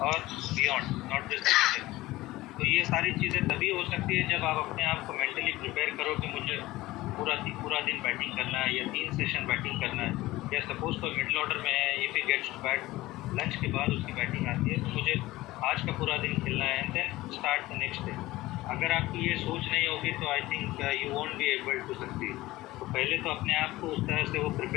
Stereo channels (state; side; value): quieter; right; 18.0 dB